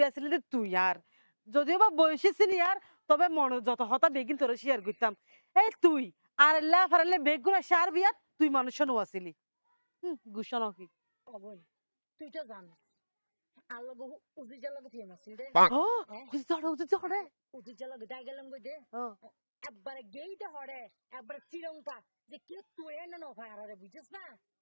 আছিল যে তুই আর যদিও বা বয়সী সিনিয়র তবে মনে যত হতা বেগিন তোর শেয়ার করতাম এই তুই আর এল্লা ফারালে বেগুনা সার বিয়াত তুই মানুষ নো আসিলি গুসা নাকি অবই তুই তো জান আল্লাহ বহু উজি জালা গথি মাসিল দে ও উজি জড়ে উজি জালা গদাই গেলাম গই দে একবারে গেইতে হড়ে একবারে শ্রীলঙ্কা যে কে তুই না ন ভাই আরে বুঝছিস না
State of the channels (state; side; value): inverted; both; correlation -1.00